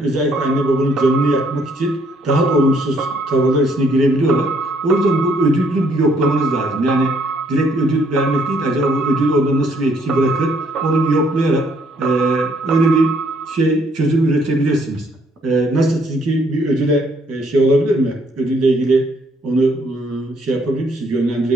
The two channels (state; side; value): normal; both; correlation 0.68